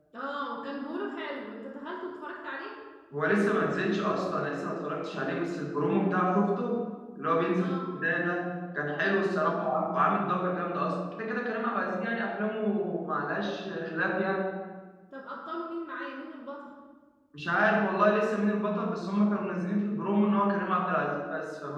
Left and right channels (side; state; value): both; identical; correlation 1.00